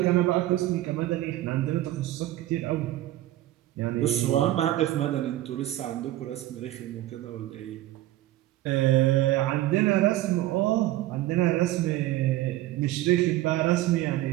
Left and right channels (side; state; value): left; quieter; 15.2 dB